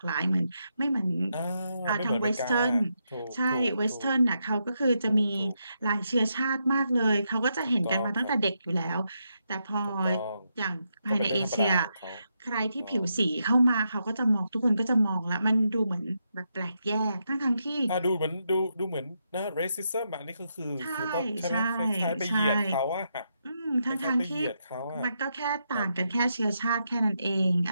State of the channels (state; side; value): inverted; both; correlation -0.82